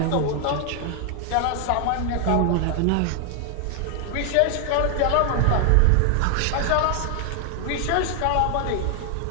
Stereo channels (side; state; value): both; different; correlation 0.00